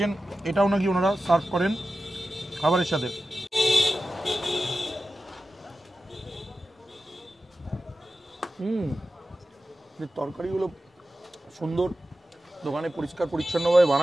এটাও নাকি ওনারা সার্ভ করেন খাবারের সাথে। তরকারিগুলো সুন্দর, দোকানে পরিষ্কার পরিচ্ছন্নভাবে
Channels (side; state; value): both; normal; correlation 0.93